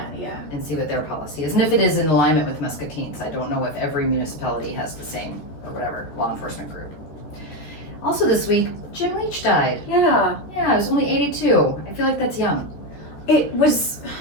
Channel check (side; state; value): right; late; 14 ms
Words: and see what their policy is, and if it is in alignment with Muscatine's. I don't know if every municipality has the same or whatever law enforcement group. Also this week, Jim Leach died. Yeah. Yeah, he was only 82. I feel like that's young. It was.